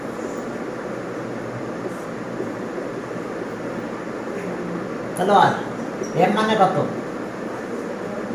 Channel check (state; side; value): identical; both; correlation 1.00